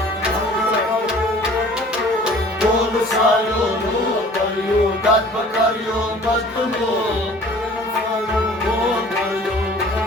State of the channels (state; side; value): normal; both; correlation 0.49